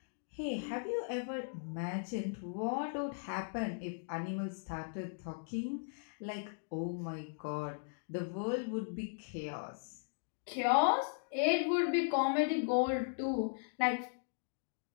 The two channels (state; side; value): silent; right; digital silence